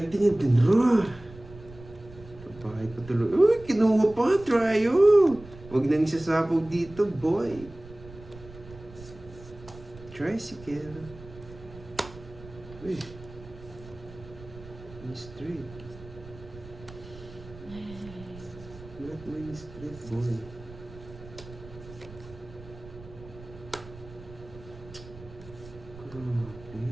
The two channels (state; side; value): noise; right; rumble, 17 dB below the sound